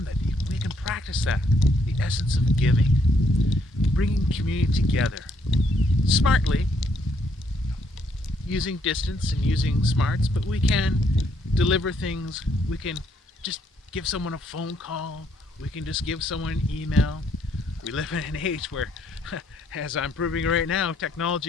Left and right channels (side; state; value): both; normal; correlation 0.71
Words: that we can practice that, the essence of giving, bringing community together smartly, using distance and using smarts, but we can deliver things. We can just give someone a phone call. We can just give someone an email. We live in an age where, as I'm proving right now,